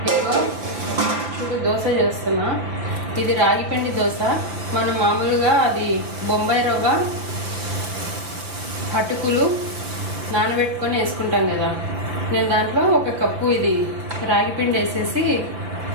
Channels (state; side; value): late; left; 5.5 ms